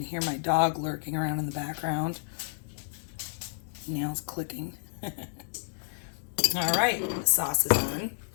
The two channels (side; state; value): right; silent; 58 dB below the other